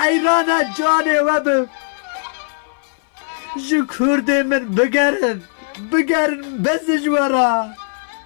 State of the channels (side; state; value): right; silent; 60 dB below the other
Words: جانه وبم جو کرده من بگرن بس جوارا